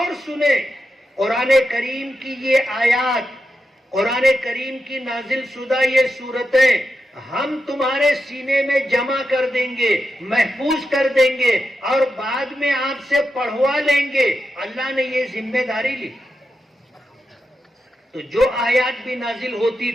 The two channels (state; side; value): normal; both; correlation 0.88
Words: سنیں قرآن کریم کی یہ آیات، قرآن کریم کی نازل شدہ یہ صورتیں ہم تمہارے سینے میں جمع کر دیں گے، محفوظ کر دیں گے اور بعد میں آپ سے پڑھوا لیں گے۔ اللہ نے یہ ذمہ داری لی۔ تو جو آیات بھی نازل ہوتی